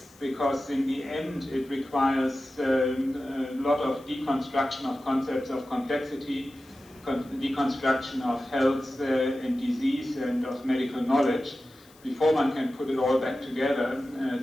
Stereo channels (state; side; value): noise; left; hiss, 27 dB below the sound